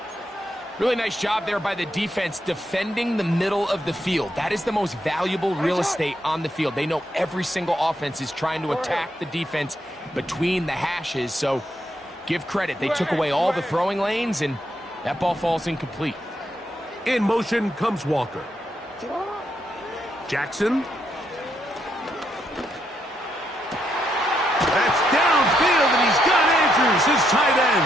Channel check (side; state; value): both; normal; correlation 0.78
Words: Really nice job there by the defense defending the middle of the field. That is the most valuable real estate on the field. They know every single offense is trying to attack the defense between the hashes. So give credit. They took away all the throwing lanes, and that ball falls incomplete. In motion comes Walker. Jackson. That's downfield, and he's got Andrews, his tight